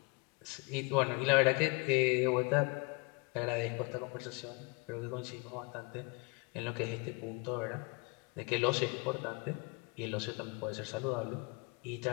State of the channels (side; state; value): right; quieter; 29.6 dB